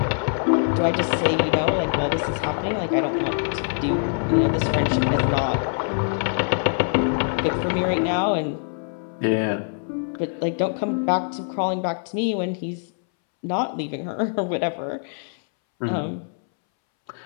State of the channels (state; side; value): silent; right; 63 dB below the other